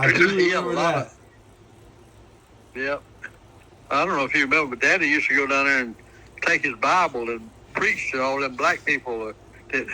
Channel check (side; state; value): both; identical; correlation 1.00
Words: do He had a remember lot that. of- Yep. I don't know if you remember, but Daddy used to go down there and take his Bible and preach to all them black people that